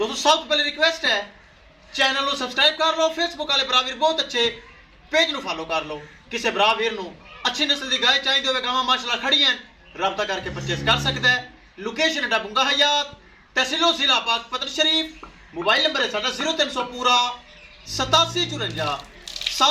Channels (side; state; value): both; identical; correlation 1.00